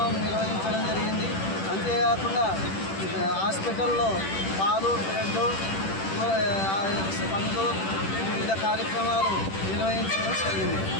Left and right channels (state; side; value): late; right; 10 ms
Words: నిర్వహించడం జరిగింది. అంతేకాకుండా హాస్పిటల్లో పాలు, బ్రెడ్, పండ్లు, వివిధ కార్యక్రమాలు నిర్వహించడం జరిగింది.